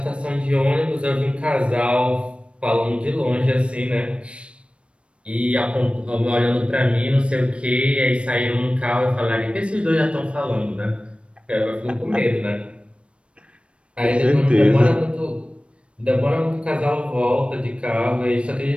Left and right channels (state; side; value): late; left; 0.059 ms